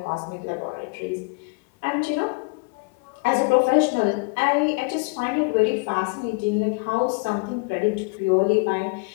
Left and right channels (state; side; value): quieter; right; 30.9 dB